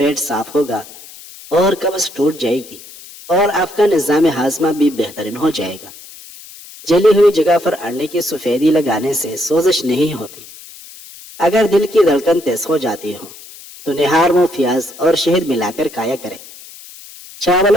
صاف ہوگا اور قبض ٹوٹ جائے گی اور آپ کا نظام ہاضمہ بھی بہترین ہو جائے گا۔ جلی ہوئی جگہ پر انڈے کی سفیدی لگانے سے سوزش نہیں ہوتی۔ اگر دل کی دھڑکن تیز ہو جاتی ہو تو نہار منہ پیاز اور شہد ملا کر کھایا کرے۔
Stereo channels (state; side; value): noise; left; hiss, 18 dB below the sound